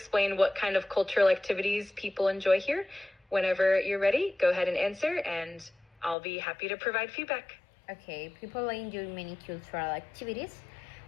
what kind of cultural activities people enjoy here? Whenever you're ready, go ahead and answer, and I'll be happy to provide feedback. Okay, people enjoy many cultural activities,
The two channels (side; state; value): right; drops out; at 6.2 s